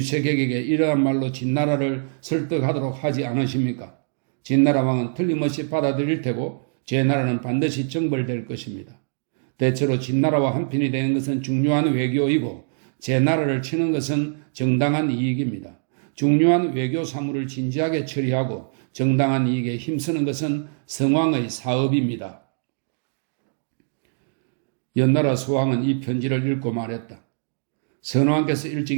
이러한 말로 진나라를 설득하도록 하지 않으십니까? 진나라 왕은 틀림없이 받아들일 테고 제나라는 반드시 정벌될 것입니다. 대체로 진나라와 한편이 되는 것은 중요한 외교이고 제나라를 치는 것은 정당한 이익입니다. 중요한 외교 사무를 진지하게 처리하고 정당한 이익에 힘쓰는 것은 성왕의 사업입니다. 연나라 소왕은 이 편지를 읽고 말했다. 선왕께서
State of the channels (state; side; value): silent; left; digital silence